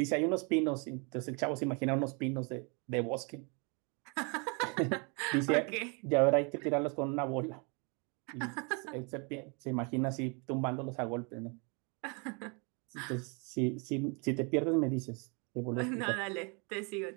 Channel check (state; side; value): quieter; left; 33.6 dB